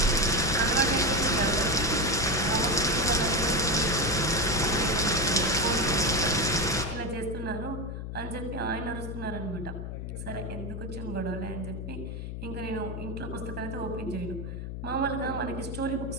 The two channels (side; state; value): left; noise; hum, 6 dB below the sound